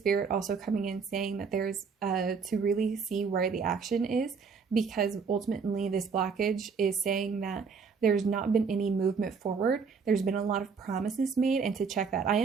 also coming in saying that there's to really see where the action is, because ultimately this blockage is saying that there's not been any movement forward. There's been a lot of promises made, and to check that, I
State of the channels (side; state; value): left; quieter; 5.5 dB